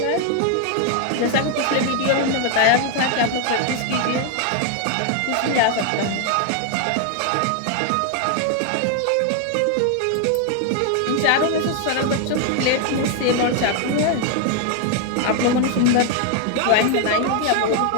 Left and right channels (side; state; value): both; different; correlation 0.00